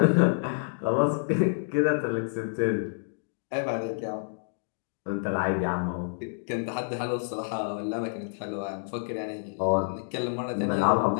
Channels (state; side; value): silent; right; digital silence